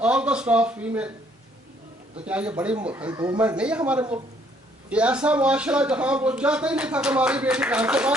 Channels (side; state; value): both; normal; correlation 0.65